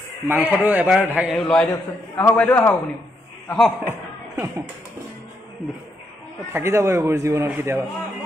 মাংসটো এবাৰ লৰাই দিয়কচোন। আহক বাইদেউ, আহক আপুনি, আহক। থাকি যাব এইবোৰ জীৱনত কেতিয়াবা।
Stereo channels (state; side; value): normal; both; correlation 0.78